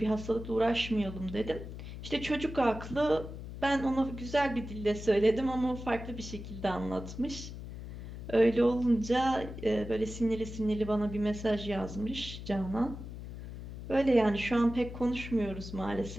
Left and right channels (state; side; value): noise; left; hum, 10 dB below the sound